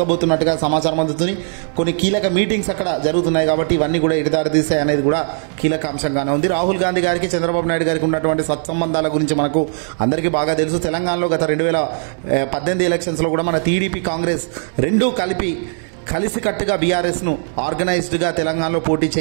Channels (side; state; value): left; silent; 60 dB below the other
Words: సమాచారం అందుతుంది. కొన్ని కీలక మీటింగ్స్ అక్కడ జరుగుతున్నాయి. కాబట్టి ఇవన్నీ కూడా ఎడదారి తీసాయి అనేది కూడా కీలక అంశంగానే ఉంది. రాహుల్ గాంధీ గారికి చంద్రబాబు నాయుడు గారికి ఉన్నటువంటి సత్సంబంధాల గురించి మనకు అందరికీ బాగా తెలుసు. తెలంగాణలో గత 2018 ఎలక్షన్స్లో కూడా మన టీడీపీ, కాంగ్రెస్ రెండూ కలిసికట్టుగా బీఆర్ఎస్ను ఆర్గనైజ్డ్గా తెలంగాణలో పోటీ